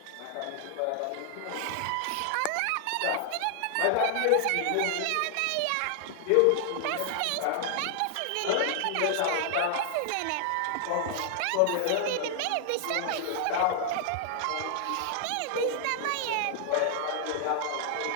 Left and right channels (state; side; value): different; both; correlation 0.00